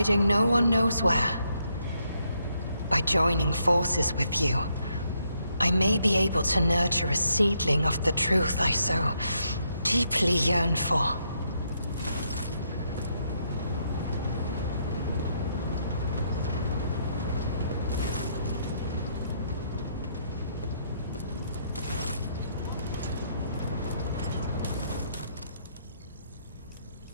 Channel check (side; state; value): both; inverted; correlation -0.75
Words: no one knows where. By joining forces with you, I may be able to nurture a seedling of the truth I so deeply yearn for.